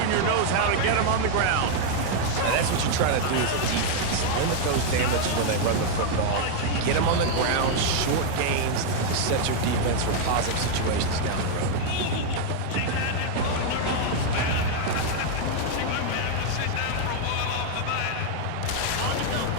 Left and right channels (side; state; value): both; different; correlation 0.00